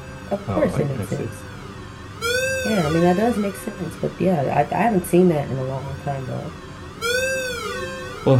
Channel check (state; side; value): identical; both; correlation 1.00